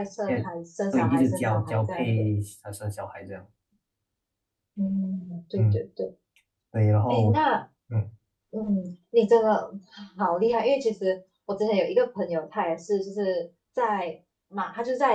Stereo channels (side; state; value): both; identical; correlation 1.00